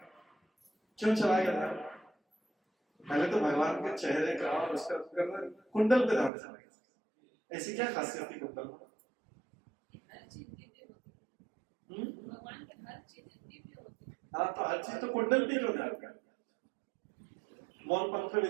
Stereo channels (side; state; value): left; drops out; at 6.3 s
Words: क्यों चलाएगा ध्यान? पहले तो भगवान के चेहरे का और उसका कुंडल पे ध्यान चलाएगा। ऐसी क्या खासियत थी कुंडल में? भगवान के हर चीज दिव्य होती है। हाँ, तो हर चीज तो कुंडल पे क्यों ध्यान कर? मोर पंख पे